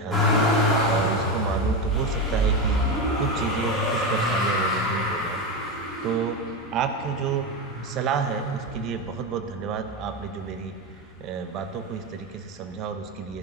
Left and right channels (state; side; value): normal; both; correlation 0.15